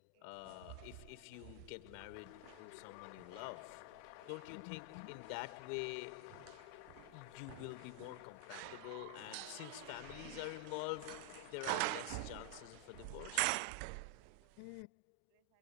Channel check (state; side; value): different; both; correlation 0.00